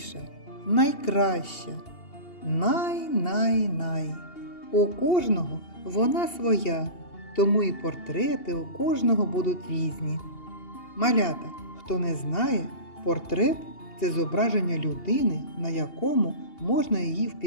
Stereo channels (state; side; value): late; right; 2.8 ms